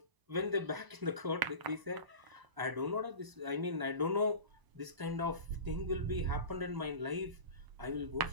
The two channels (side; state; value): left; late; 1.0 ms